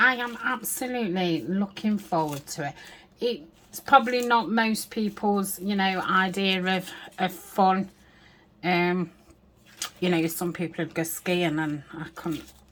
am absolutely looking forward to it. It's probably not most people's, you know, idea of fun. You know, some people would go skiing, and I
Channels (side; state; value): both; identical; correlation 1.00